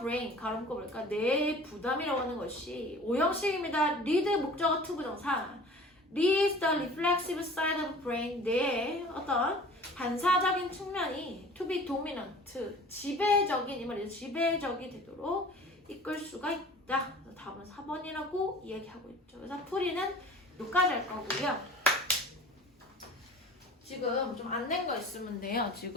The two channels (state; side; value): normal; both; correlation 0.44